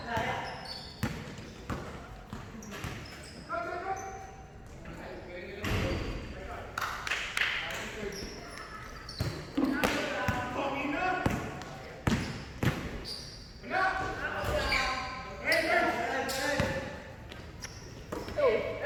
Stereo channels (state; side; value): identical; both; correlation 1.00